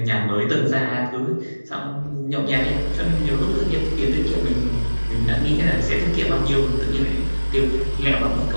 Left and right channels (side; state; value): both; inverted; correlation -1.00